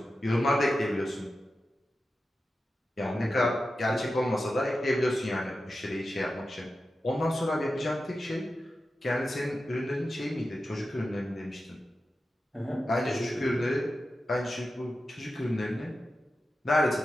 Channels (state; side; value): normal; both; correlation 0.92